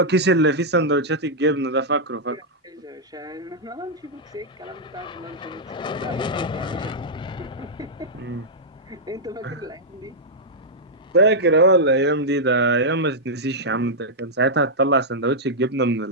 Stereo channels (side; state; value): both; normal; correlation -0.07